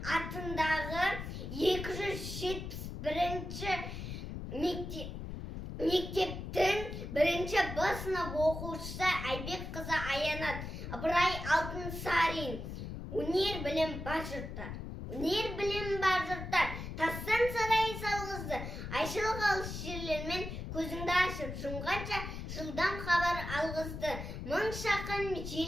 атындағы 271-ші мектептің 1-ші Б сынып оқушысы Айбекқызы Аянат Ыбырай Алтынсарин. Өнер білім бар жұрттар. Өнер білім бар жұрттар. Тастан сарай салғызды. Айшылық алыс жерлермен көзіңді ашып жұмғанша жылдам хабар алғызды. Мың шақын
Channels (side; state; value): left; noise; rumble, 7 dB below the sound